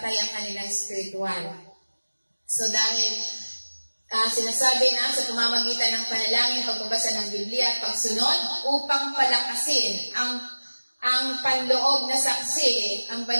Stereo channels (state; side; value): inverted; both; correlation -1.00